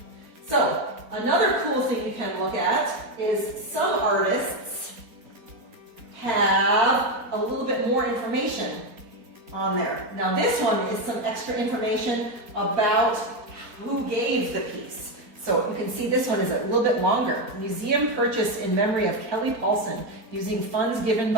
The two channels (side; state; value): left; late; 4.3 ms